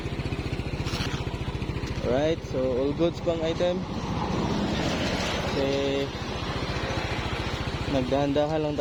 Alright, so all goods pang item. Kasi nagdahan-dahan lang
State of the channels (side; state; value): both; identical; correlation 1.00